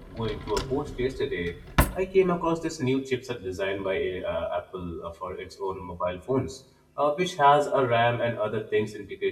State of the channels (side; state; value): both; identical; correlation 1.00